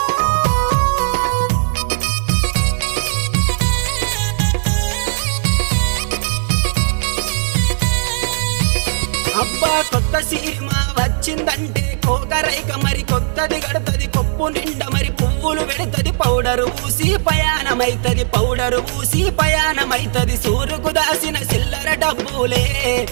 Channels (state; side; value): silent; left; digital silence